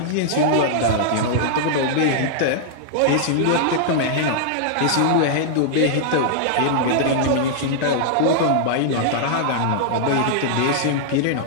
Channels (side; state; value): both; different; correlation -0.01